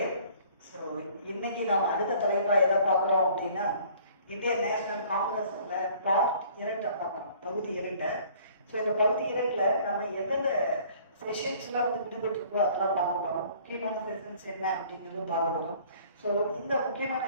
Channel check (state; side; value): inverted; both; correlation -0.54